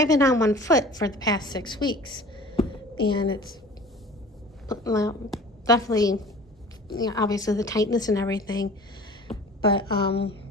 been on one foot for the past 6 weeks, and it's definitely, obviously the tightness and everything. But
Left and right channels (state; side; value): normal; both; correlation 0.43